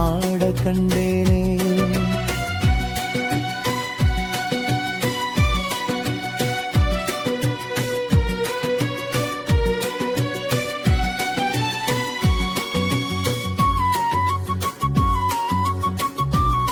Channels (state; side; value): identical; both; correlation 1.00